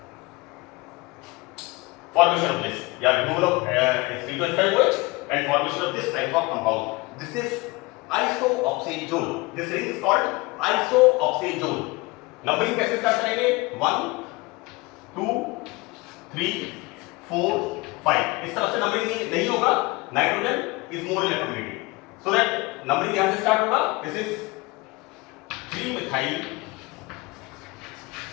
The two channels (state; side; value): quieter; right; 23.8 dB